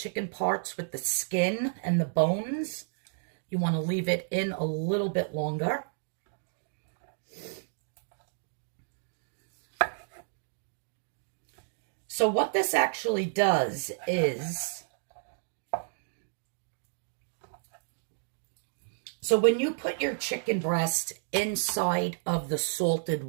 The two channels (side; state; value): left; silent; digital silence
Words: parts with the skin and the bones, you want to leave it in a little bit longer. So what this actually does is, so when you put your chicken breast inside of the salted